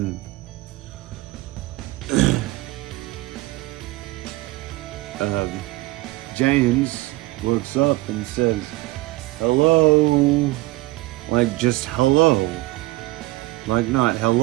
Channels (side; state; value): left; quieter; 19.7 dB